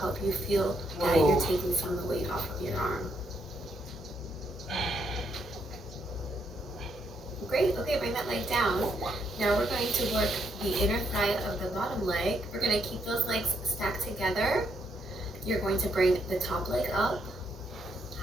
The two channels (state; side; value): normal; both; correlation 0.75